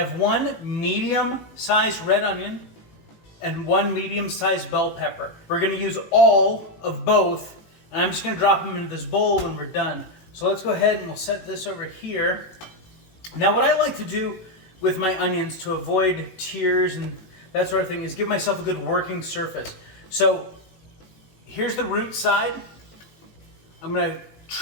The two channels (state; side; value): late; right; 18 ms